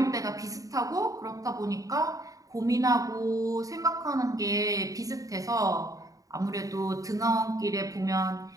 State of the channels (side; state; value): left; late; 0.17 ms